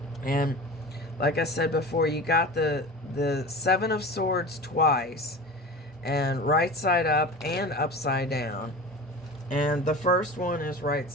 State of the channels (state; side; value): normal; both; correlation 0.33